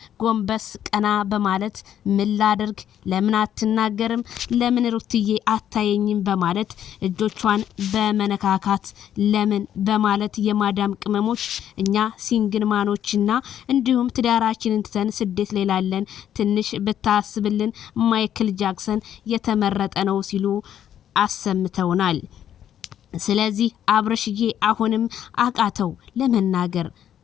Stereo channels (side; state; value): right; quieter; 10.3 dB